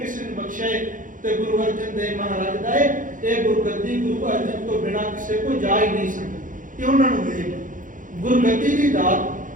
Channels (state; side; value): late; left; 0.38 ms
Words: ਨੂੰ ਬਖਸ਼ਿਆ ਤੇ ਗੁਰੂ ਅਰਜਨ ਦੇਵ ਮਹਾਰਾਜ ਦਾ ਇਹ ਗੁਰਗੱਦੀ ਗੁਰੂ ਅਰਜਨ ਤੋਂ ਬਿਨਾਂ ਕਿਸੇ ਕੋ ਜਾ ਹੀ ਨਹੀਂ ਸਕਦੀ। ਇਹ ਉਹਨਾਂ ਨੂੰ ਮਿਲੀ ਗੁਰਗੱਦੀ ਦੀ